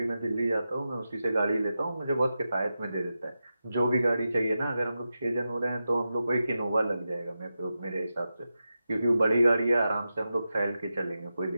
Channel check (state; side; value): inverted; both; correlation -0.91